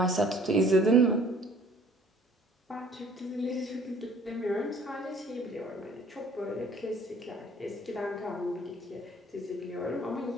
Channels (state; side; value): normal; both; correlation 0.54